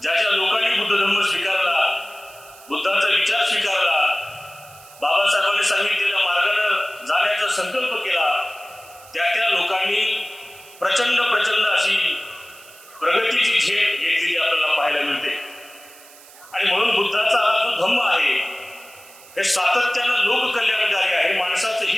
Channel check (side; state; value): right; noise; hiss, 22 dB below the sound